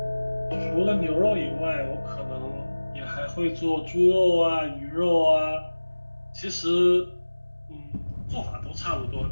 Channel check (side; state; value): both; inverted; correlation -1.00